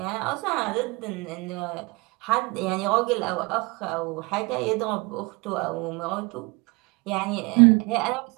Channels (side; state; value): left; quieter; 26.2 dB